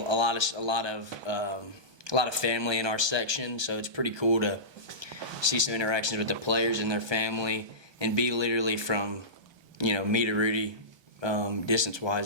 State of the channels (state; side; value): late; left; 1.2 ms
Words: of family in our section, so it's pretty cool to see some interactions with the players and their family, and be literally from, me to Rudy,